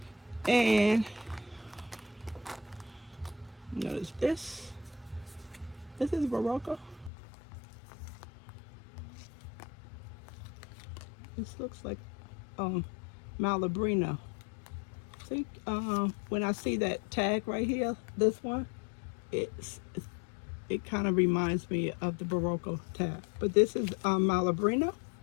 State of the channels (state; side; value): drops out; right; at 7.1 s